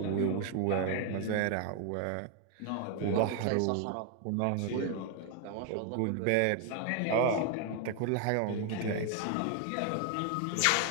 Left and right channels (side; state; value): both; different; correlation 0.00